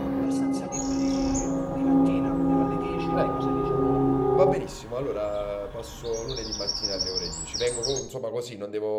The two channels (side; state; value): both; identical; correlation 1.00